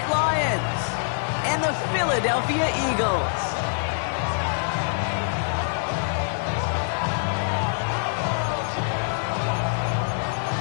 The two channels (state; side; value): silent; right; digital silence